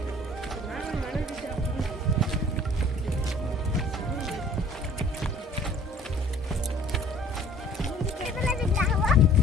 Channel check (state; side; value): normal; both; correlation 0.52